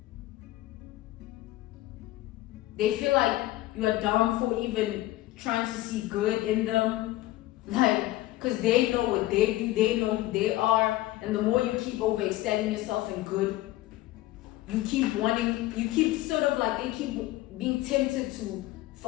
They feel like you are dumb for even trying to see good in them. Like, because they know what they do, they know who they are. And the more you keep overextending yourself in good, you keep wanting, you keep sort of like, they keep being tempted to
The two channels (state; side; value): quieter; right; 16.7 dB